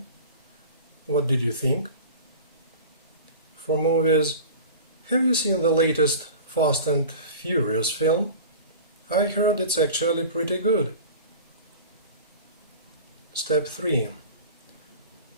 What did you think?" for movies. Have you seen the latest Fast and Furious film? I heard it's actually pretty good. Step 3.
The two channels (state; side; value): inverted; both; correlation -0.37